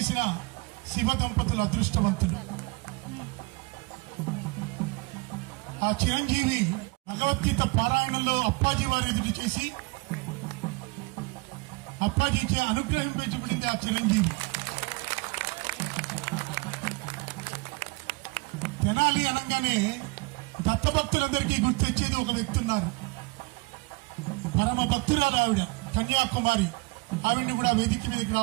శివ దంపతులు అదృష్టవంతులు. ఆ చిరంజీవి భగవద్గీత పారాయణంలో అప్పాజీ వారి ఎదురు చేసి అప్పాజీకి అనుగ్రహింపబడింది ఆ చిరంజీవి. తెనాలి అనగానే దత్తభక్తులందరికీ గుర్తొచ్చేది ఒక వ్యక్తి ఉన్నారు. పరమ భక్తురాలు ఆవిడ, కన్యాకుమారి. ఆవిడ్ని కూడా వేదిక మీదకి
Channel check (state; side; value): quieter; left; 26.3 dB